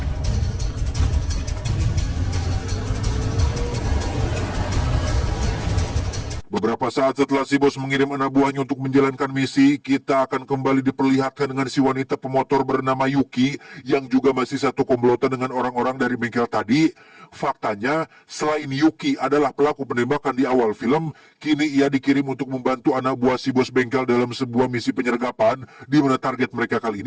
Beberapa saat setelah si bos mengirim anak buahnya untuk menjalankan misi, kita akan kembali diperlihatkan dengan si wanita pemotor bernama Yuki yang juga masih satu komplotan dengan orang-orang dari bengkel tadi. Faktanya, selain Yuki adalah pelaku penembakan di awal film, kini ia dikirim untuk membantu anak buah si bos bengkel dalam sebuah misi penyergapan, di mana target mereka kali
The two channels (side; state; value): both; identical; correlation 1.00